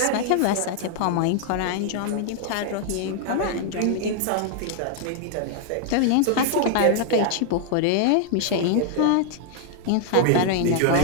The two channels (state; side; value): different; both; correlation 0.00